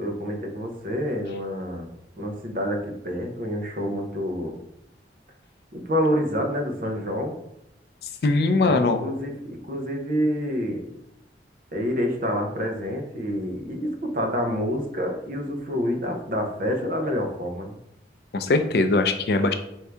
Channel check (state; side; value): normal; both; correlation 0.47